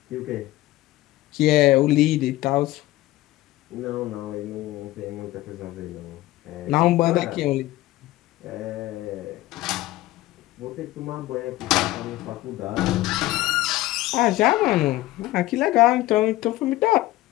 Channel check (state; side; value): quieter; right; 17.0 dB